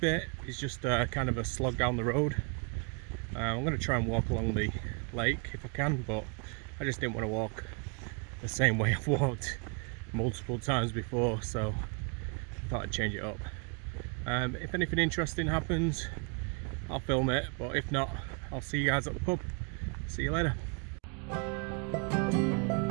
is just kind of a slog down the road. I'm going to try and walk along the lake if I can, but I just didn't want to walk the same way I've walked multiple times before, so I thought I'd change it up. If anything interesting happens, I'll film it, but if not, I'll see you guys at the pub. See you later.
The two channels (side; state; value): left; quieter; 35.4 dB